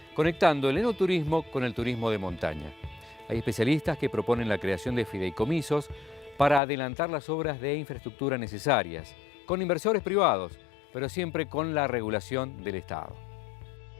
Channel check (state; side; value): drops out; right; at 6.6 s